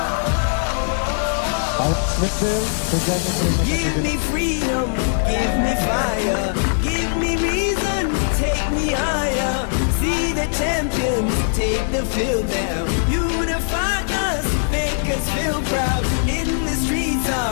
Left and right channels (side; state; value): right; silent; 56 dB below the other